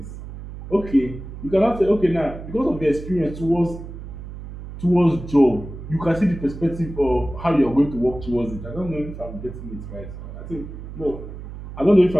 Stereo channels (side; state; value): right; noise; hum, 11 dB below the sound